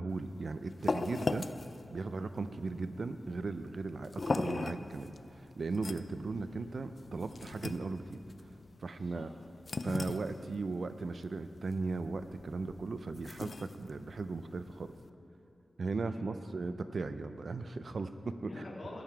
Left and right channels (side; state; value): both; normal; correlation 0.92